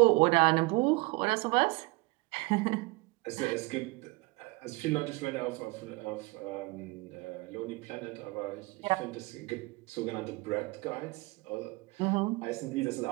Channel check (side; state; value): left; quieter; 25.5 dB